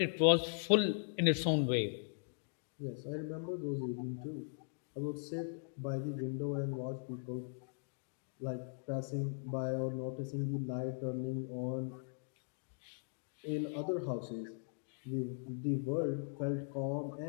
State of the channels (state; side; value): silent; right; digital silence